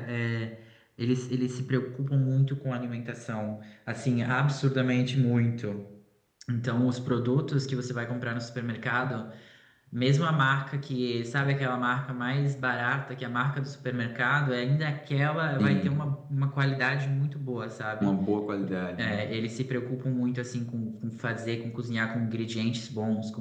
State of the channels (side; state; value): both; identical; correlation 1.00